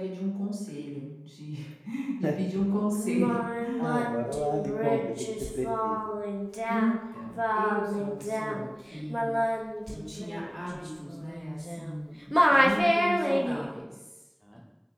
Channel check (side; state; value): both; identical; correlation 1.00